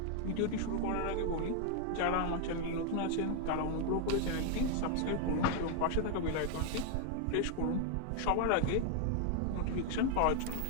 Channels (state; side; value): different; both; correlation 0.00